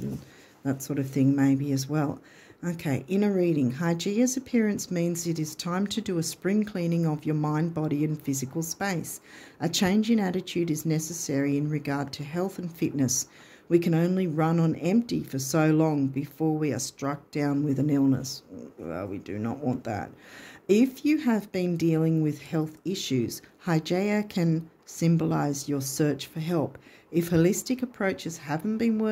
that sort of thing maybe as well. Okay, inner reading. Hygeia's appearance means it is time to do a spring cleaning of your mind, body and physical space. A change in attitude is necessary in regard to health and fitness. We can only run on empty for so long before we are struck down with an illness. Well, we do not want that. If you have been dealing with health issues, Hygeia can symbolize your search for help. If holistic approaches haven't been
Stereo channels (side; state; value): both; identical; correlation 1.00